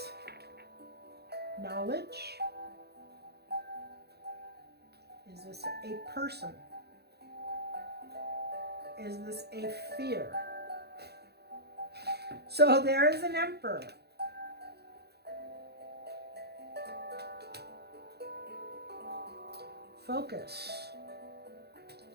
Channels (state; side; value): late; left; 0.48 ms